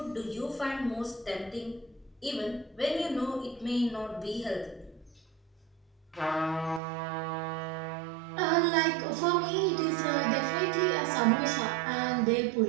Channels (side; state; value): left; drops out; at 6.8 s